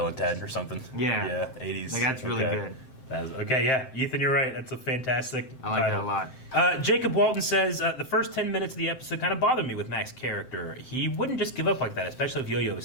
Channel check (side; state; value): right; late; 7.7 ms